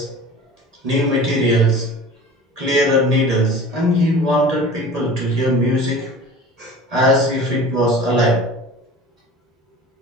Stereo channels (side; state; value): both; normal; correlation 0.39